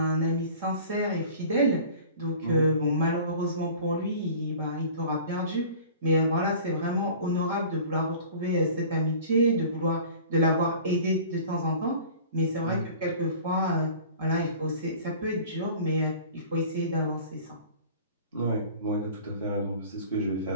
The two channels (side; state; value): both; inverted; correlation -0.44